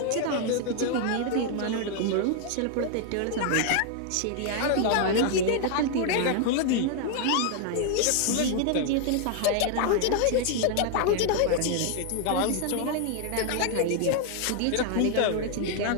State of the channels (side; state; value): both; different; correlation 0.00